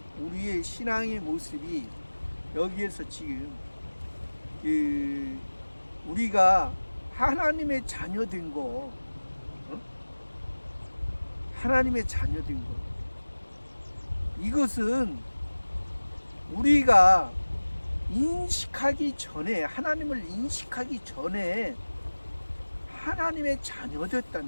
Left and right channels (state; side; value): inverted; both; correlation -1.00